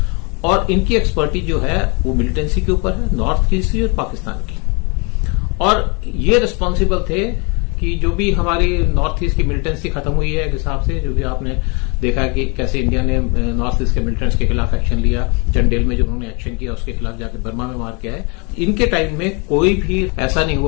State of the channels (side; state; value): right; quieter; 31.7 dB